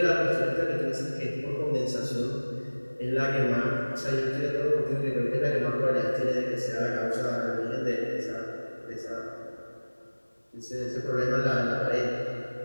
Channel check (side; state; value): both; inverted; correlation -1.00